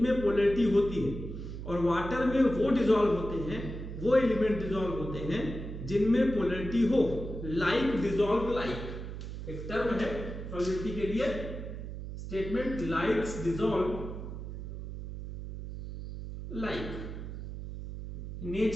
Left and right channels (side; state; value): right; noise; hum, 8 dB below the sound